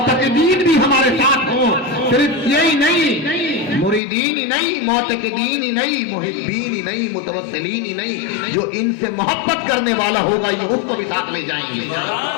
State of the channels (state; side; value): drops out; right; at 4.0 s